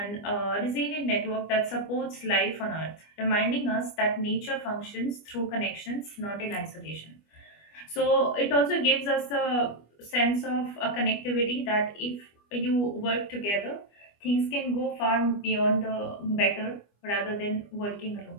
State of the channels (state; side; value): late; right; 25 ms